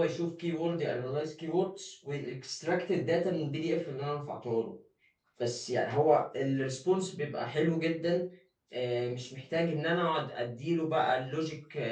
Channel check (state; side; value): identical; both; correlation 1.00